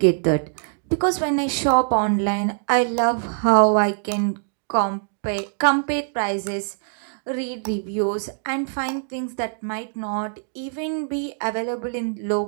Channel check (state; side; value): silent; left; digital silence